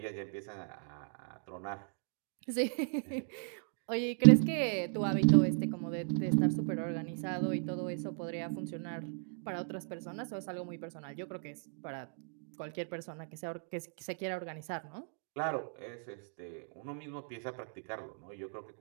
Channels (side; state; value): left; silent; 54 dB below the other